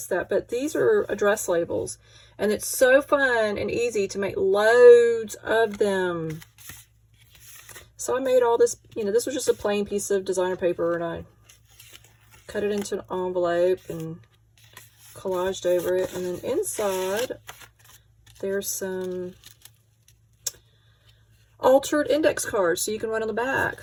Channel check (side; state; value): both; identical; correlation 1.00